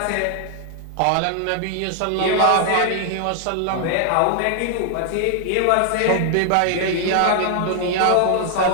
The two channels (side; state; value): both; different; correlation 0.00